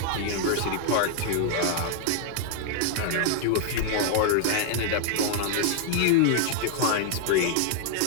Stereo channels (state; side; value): different; both; correlation 0.00